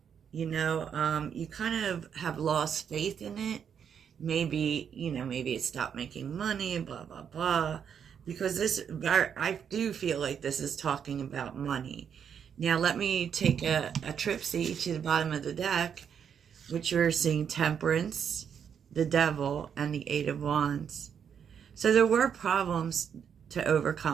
You kind of have lost faith in it. Maybe it stopped making money, blah, blah, blah. Because I do feel like this is talking about money. Now, let me take a tripsy to the bottom of the deck, which you're seeing Temperance, the Devil, and the Eight of Wands. So there were problems to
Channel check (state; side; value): quieter; left; 7.8 dB